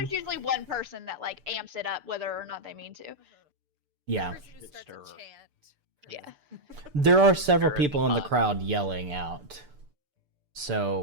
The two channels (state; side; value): late; left; 6.8 ms